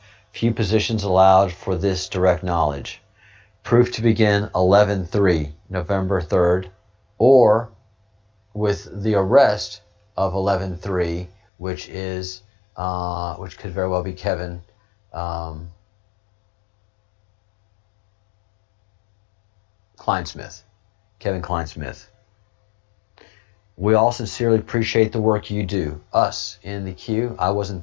Few positions allowed for this direct knowledge. Proof to begin 11/3, November 3rd, or with the arrest of 11/3, which is which could very well be Kevin Kleinsmith. Kevin Kleinsmith. We all sincerely appreciate the work you do. Us in the queue. I wasn't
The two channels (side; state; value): right; drops out; at 11.4 s